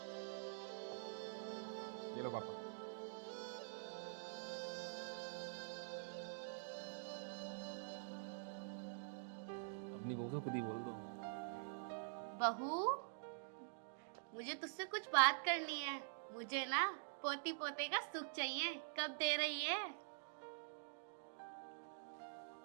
ये लो पापा। अपनी बहू से खुद ही बोल दो। बहू, मुझे तुझसे कुछ बात करनी है। मुझे ना पोती पोते का सुख चाहिए, कब दे रही है?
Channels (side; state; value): left; silent; digital silence